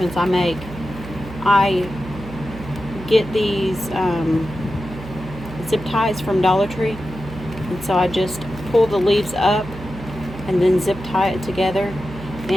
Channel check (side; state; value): right; noise; hum, 13 dB below the sound